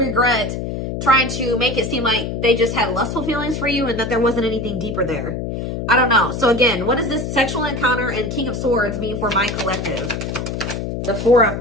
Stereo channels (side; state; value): left; noise; hum, 4 dB below the sound